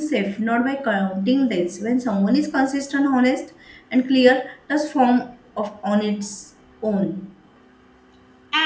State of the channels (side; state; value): both; identical; correlation 1.00